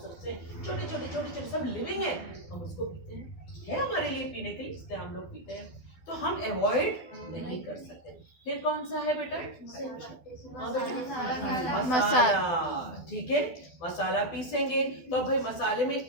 से छोटे छोटे छोटे छोटे सब लिविंग है, हम उसको पीते हैं, है हमारे लिए पीने के लिए, इसलिए हम लोग पीते हैं, तो हम अवॉइड नहीं कर सकते। फिर कौन सा है बेटा? हाँ बेटा, मसाला, ठीक है, मसाला पीसेंगे तो भाई मसाले में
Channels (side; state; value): right; late; 12 ms